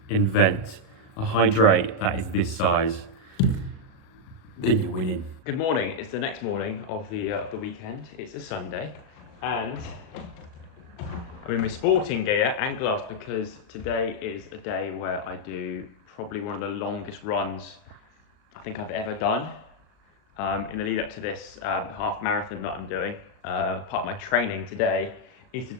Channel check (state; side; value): late; right; 37 ms